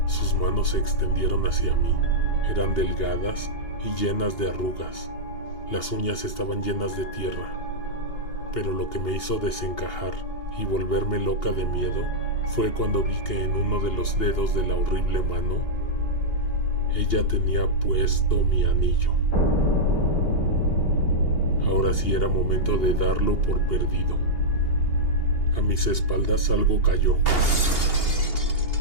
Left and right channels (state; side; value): late; right; 2.8 ms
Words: Sus manos se extendieron hacia mí. Eran delgadas y llenas de arrugas. Las uñas estaban llenas de tierra. Pero lo que me hizo desencajar y volverme loca de miedo fue cuando vi que en uno de los dedos de la horrible mano, ella tenía puesto mi anillo. Ahora sí era momento de darlo por perdido. A mis espaldas algo cayó.